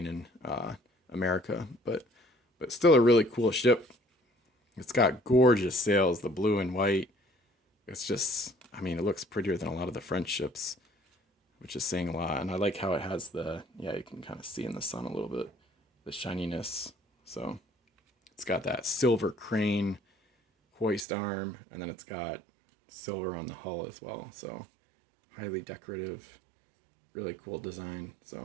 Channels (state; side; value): drops out; left; at 21.1 s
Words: and America, but still a really cool ship. It's got gorgeous sails, the blue and white. It's just, I mean, it looks prettier than a lot of the French ships, which is saying a lot. And I like how it has you can kind of see in the sun a little bit, the shininess. So it's got that silver crane hoist arm, and then it's got silver on the hull as well. So highly decorative, really cool design.